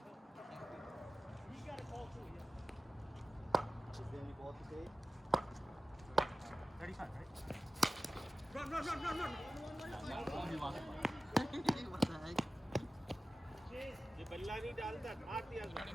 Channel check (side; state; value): both; normal; correlation 0.95